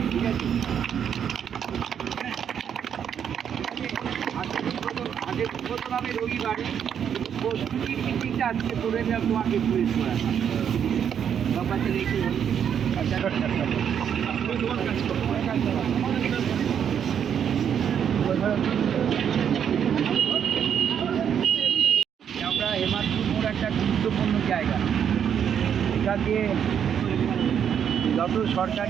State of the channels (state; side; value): quieter; left; 8.4 dB